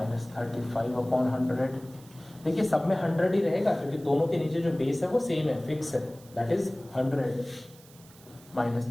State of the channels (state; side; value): noise; right; hiss, 24 dB below the sound